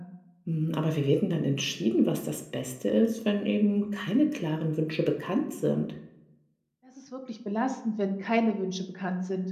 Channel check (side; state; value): both; identical; correlation 1.00